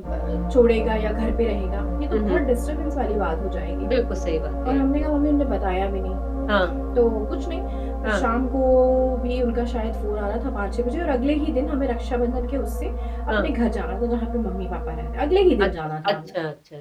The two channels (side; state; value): both; identical; correlation 1.00